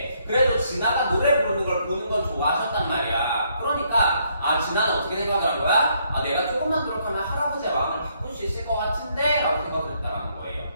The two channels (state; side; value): inverted; both; correlation -0.71